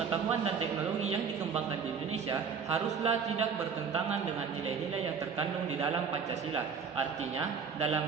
dan teknologi yang dikembangkan di Indonesia haruslah tidak bertentangan dengan nilai-nilai yang terkandung di dalam Pancasila. Artinya,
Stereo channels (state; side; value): quieter; left; 6.2 dB